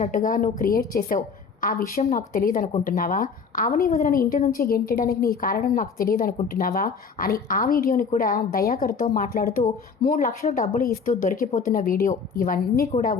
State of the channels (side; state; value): right; quieter; 5.5 dB